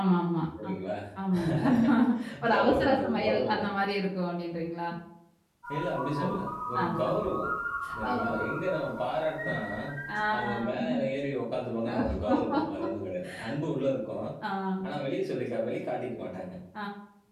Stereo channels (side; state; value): both; identical; correlation 1.00